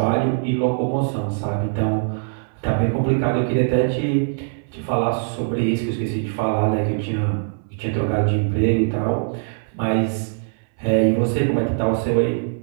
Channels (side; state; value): left; silent; 64 dB below the other